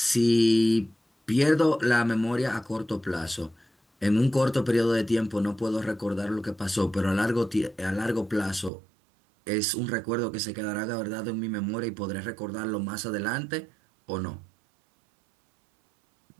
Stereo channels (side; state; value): left; drops out; at 8.7 s